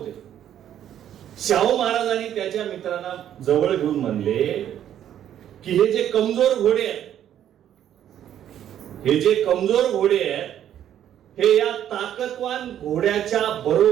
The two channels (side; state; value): left; quieter; 10.6 dB